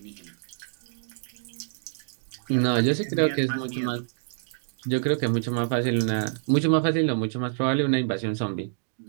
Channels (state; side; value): silent; left; digital silence